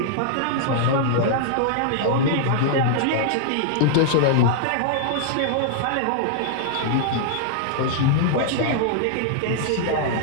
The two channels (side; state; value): both; different; correlation -0.01